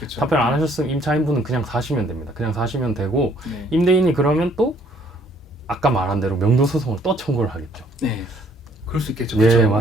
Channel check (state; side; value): normal; both; correlation 0.63